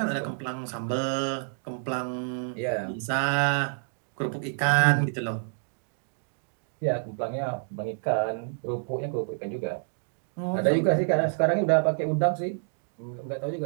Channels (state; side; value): silent; left; 59 dB below the other